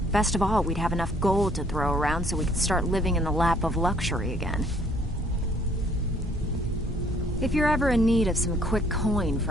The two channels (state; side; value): normal; both; correlation 0.62